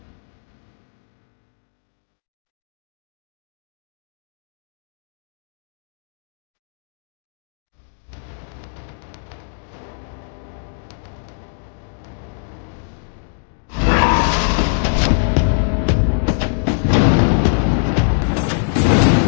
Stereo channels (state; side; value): silent; right; digital silence